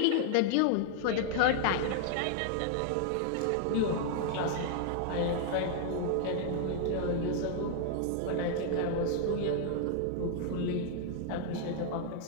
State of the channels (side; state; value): both; different; correlation 0.00